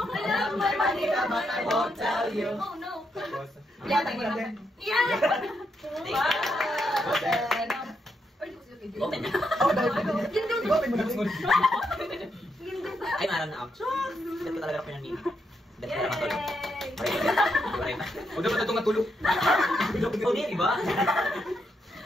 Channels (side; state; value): both; normal; correlation 0.80